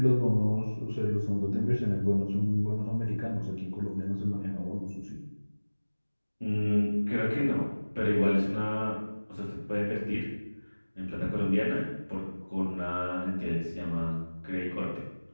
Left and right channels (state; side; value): inverted; both; correlation -1.00